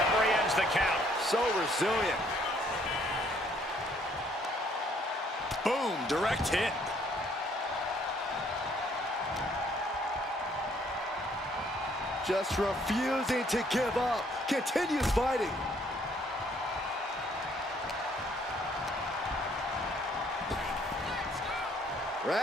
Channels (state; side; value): normal; both; correlation 0.64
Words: ends the count. So resilient. Boom, direct hit. Just refusing to give up. Continues fighting.